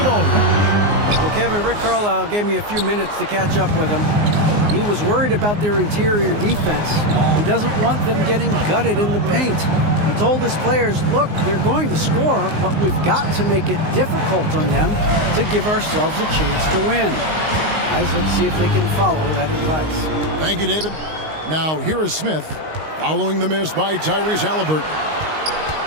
Aldridge. Well, Kevin, Rick Carlisle gave me a few minutes to catch up with him. He was worried about their interior defense. He doesn't want them getting gutted in the paint. He told his players, look, they're going to score, but we've got to make it difficult on them to give ourselves a chance to win. Guys, let's see if they can follow that advice. Thank you, David. Now, here is Smith following the miss by Tyrese Haliburton.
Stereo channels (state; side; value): late; left; 19 ms